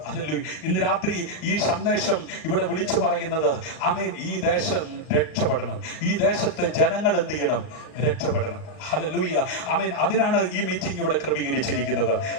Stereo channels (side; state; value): right; late; 38 ms